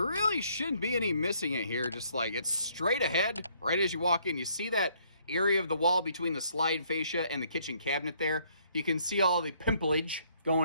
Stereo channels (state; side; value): inverted; both; correlation -0.66